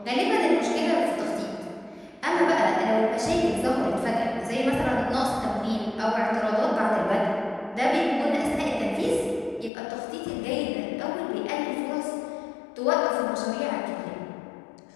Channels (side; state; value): right; drops out; at 9.7 s